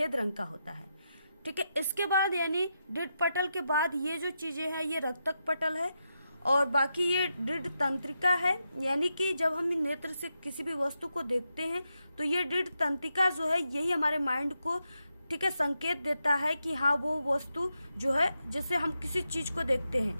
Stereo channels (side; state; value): both; inverted; correlation -0.86